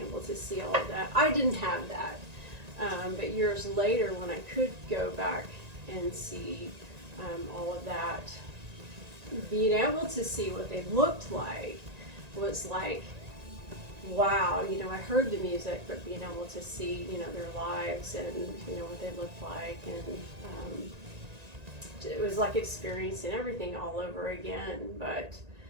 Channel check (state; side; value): late; left; 1.9 ms